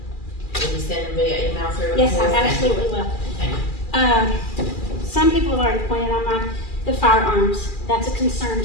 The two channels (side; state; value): right; late; 2.4 ms